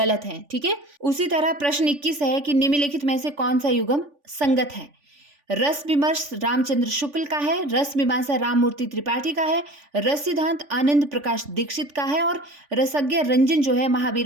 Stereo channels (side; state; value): left; late; 3.5 ms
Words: हैं, ठीक है। उसी तरह प्रश्न 21 है कि निम्नलिखित में से कौन सा युग्म संगत है? रस विमर्श रामचंद्र शुक्ल का है, रस मीमांसा राममूर्ति त्रिपाठी का है, रस सिद्धांत आनंद प्रकाश दीक्षित का है और रसज्ञ रंजन जो है